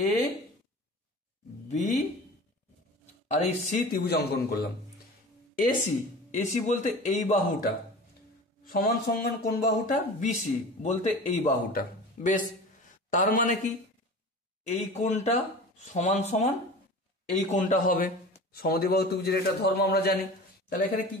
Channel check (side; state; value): both; normal; correlation 0.36